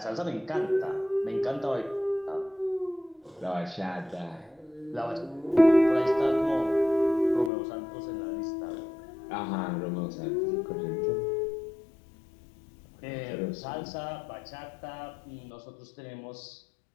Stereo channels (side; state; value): right; drops out; at 7.5 s